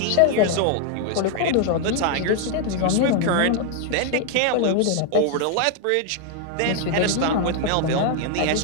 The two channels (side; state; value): both; different; correlation 0.00